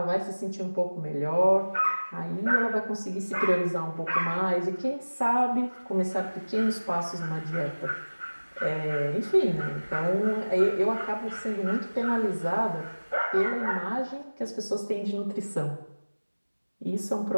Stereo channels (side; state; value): both; inverted; correlation -1.00